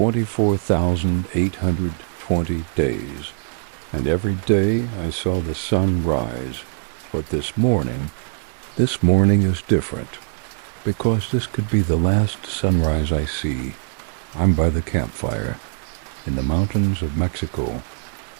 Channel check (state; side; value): silent; left; 64 dB below the other